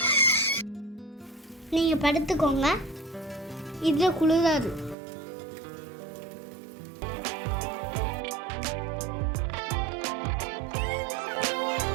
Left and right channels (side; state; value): left; drops out; at 5.0 s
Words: நீங்க படுத்துக்கோங்க, இதுல குளிராது.